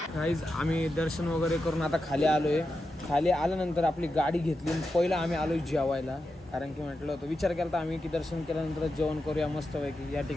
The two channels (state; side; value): normal; both; correlation 0.89